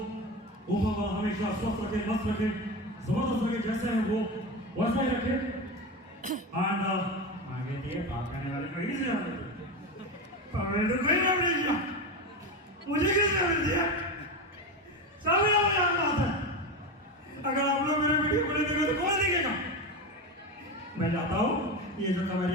ऊपर हमेशा स्वस्थ रखे, मस्त रखे, जबरदस्त रखे, जैसे हैं वो वैसा ही रखे। एंड आगे दिए बात करने वाले को ही से आगे तो कोई नाम नहीं दिया, मुझे किसने मिल दिया? सभी लोग यहाँ बात है। अगर आप लोग मेरे वीडियो को नहीं देखेंगे तो कौन देखेगा? मैं चाहता हूँ ये जो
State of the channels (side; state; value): both; normal; correlation 0.20